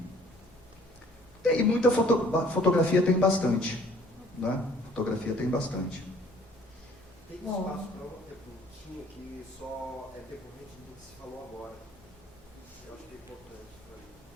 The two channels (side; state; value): both; normal; correlation 0.56